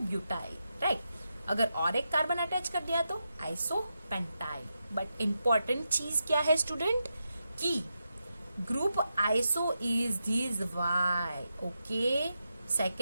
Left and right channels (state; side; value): inverted; both; correlation -0.87